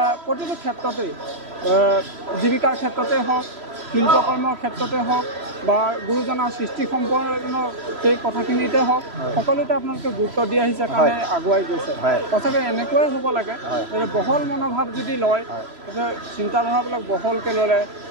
প্ৰতিটো ক্ষেত্ৰতেই জীৱিকাৰ ক্ষেত্ৰতে হওক শিল্পকৰ্মৰ ক্ষেত্ৰতে হওক বা গুৰুজনাৰ সৃষ্টি সম্পন্ন সেই কথাখিনিতে হওক সকলোতে আপোনালোকে গুৰুত্ব দি আহিছে কাৰণে আগুৱাই গৈছে সঁচাকৈ এনেকুৱাই হ'ব লাগে যে বহল মনোভাৱ যদি লয় চিন্তাধাৰাবিলাক বহলকৈ ল'লে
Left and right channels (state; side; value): late; left; 3.0 ms